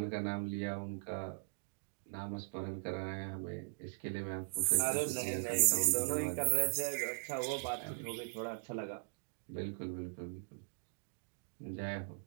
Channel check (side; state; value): left; silent; digital silence